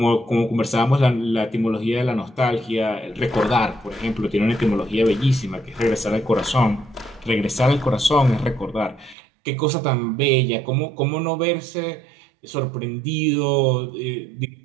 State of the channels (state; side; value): drops out; left; at 9.2 s